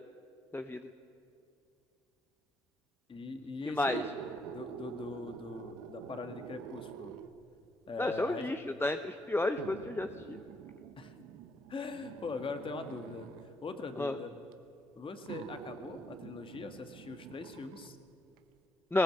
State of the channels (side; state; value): both; normal; correlation 0.75